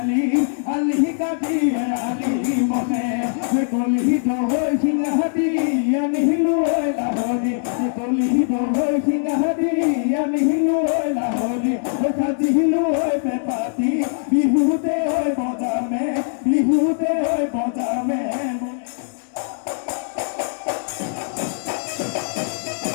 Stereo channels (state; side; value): silent; right; 57 dB below the other